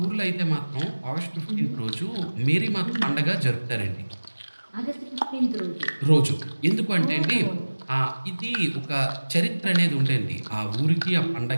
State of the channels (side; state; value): both; inverted; correlation -1.00